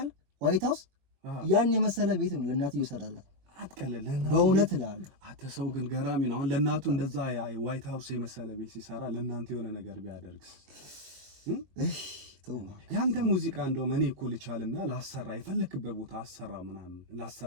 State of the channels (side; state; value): left; late; 21 ms